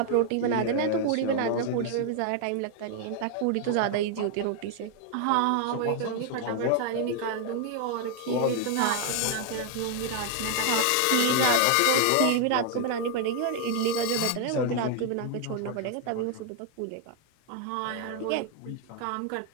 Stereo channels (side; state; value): both; different; correlation 0.00